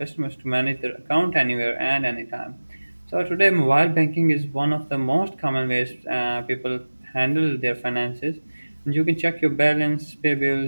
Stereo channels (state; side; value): inverted; both; correlation -1.00